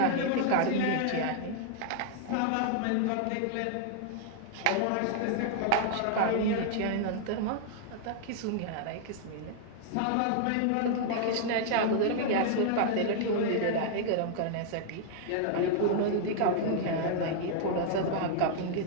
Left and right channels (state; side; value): different; both; correlation 0.00